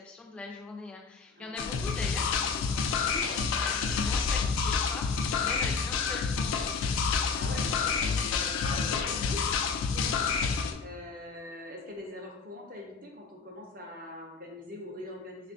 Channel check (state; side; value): quieter; right; 5.1 dB